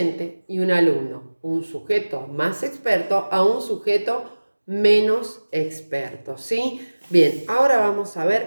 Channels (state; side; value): inverted; both; correlation -1.00